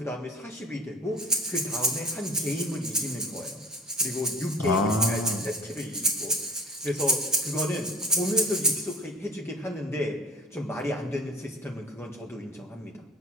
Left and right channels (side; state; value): both; normal; correlation 0.41